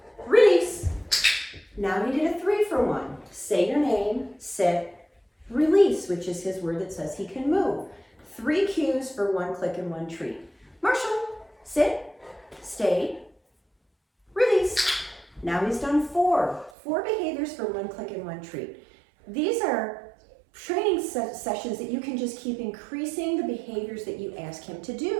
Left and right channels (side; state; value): left; drops out; at 16.7 s